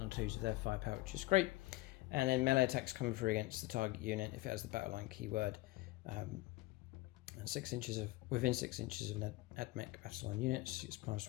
on 2s of their firepower, which is great. And then melee attacks coming through against the target unit if it has the battle line keyword, and within 6 inches of an AdMech battle line units, it's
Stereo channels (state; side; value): quieter; right; 20.0 dB